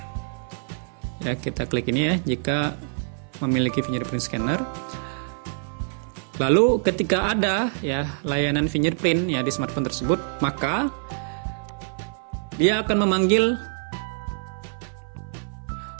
Ya, kita klik ini ya, jika memiliki fingerprint scanner. Lalu ketika ada ya layanan fingerprint ya di smartphone tersebut, maka dia akan memanggil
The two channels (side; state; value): left; silent; 57 dB below the other